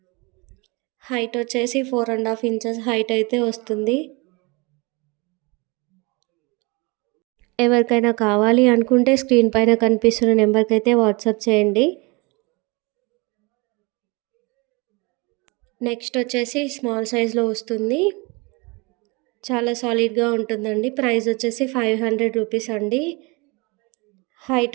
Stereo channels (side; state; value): left; quieter; 27.5 dB